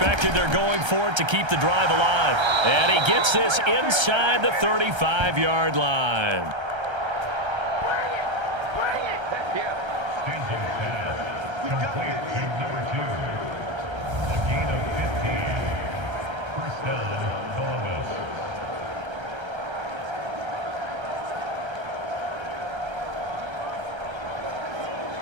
they're going for it to keep the drive alive. And he gets this inside the 35-yard line.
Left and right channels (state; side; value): late; left; 1.3 ms